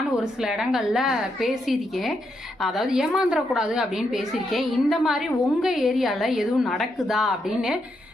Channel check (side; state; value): both; normal; correlation 0.81